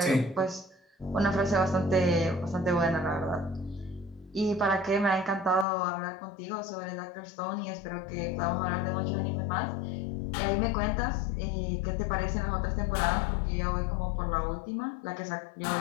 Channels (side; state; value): right; drops out; at 5.7 s